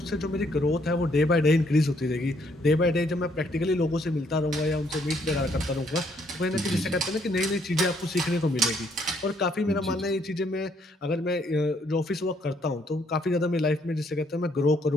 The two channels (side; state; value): both; normal; correlation 0.69